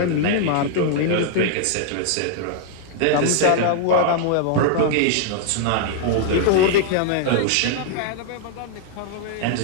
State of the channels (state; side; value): different; both; correlation -0.01